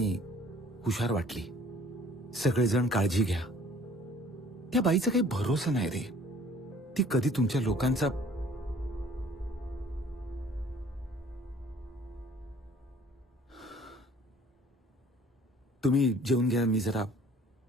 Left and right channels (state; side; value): normal; both; correlation 0.54